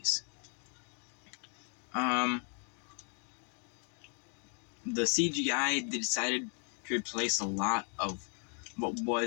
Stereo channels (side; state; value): right; quieter; 39.5 dB